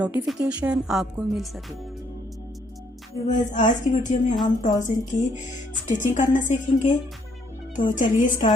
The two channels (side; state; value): both; normal; correlation 0.69